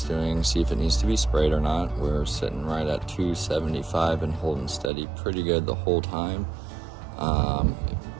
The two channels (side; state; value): left; drops out; at 4.9 s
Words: doing, see if it needs to be sprayed or not. We're sitting right at 275 and holding steady pretty good the whole time.